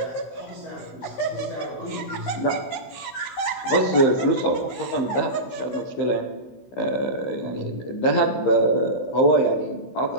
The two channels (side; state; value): right; late; 15 ms